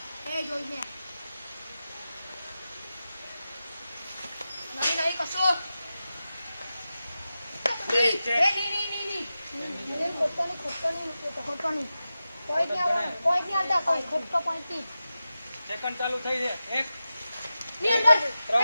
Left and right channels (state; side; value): inverted; both; correlation -0.93